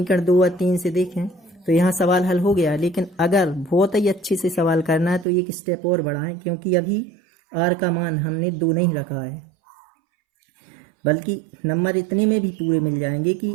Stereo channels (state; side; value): drops out; left; at 5.2 s